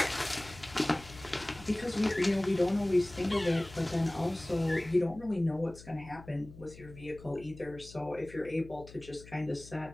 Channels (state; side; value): noise; left; hum, 18 dB below the sound